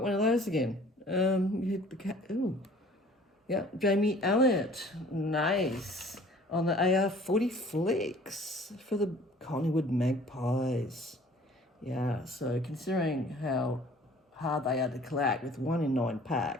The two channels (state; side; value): normal; both; correlation 0.51